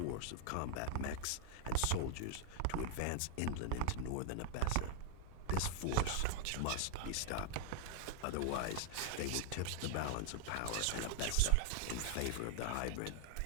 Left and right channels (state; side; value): different; both; correlation 0.00